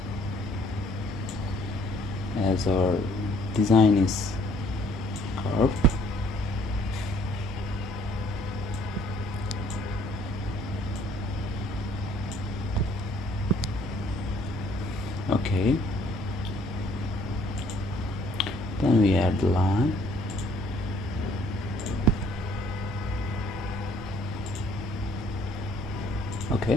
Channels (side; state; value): both; normal; correlation 0.61